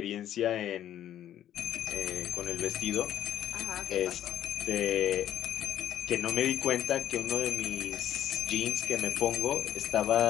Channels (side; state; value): right; quieter; 11.4 dB